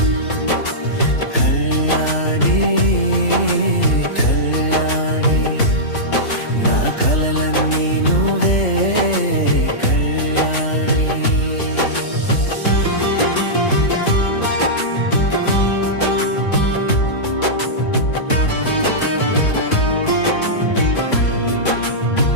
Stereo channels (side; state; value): right; late; 3.4 ms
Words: కలలన్నీ నువ్వే కళ్యాణి.